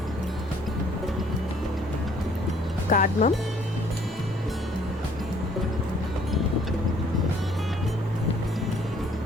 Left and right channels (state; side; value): normal; both; correlation 0.60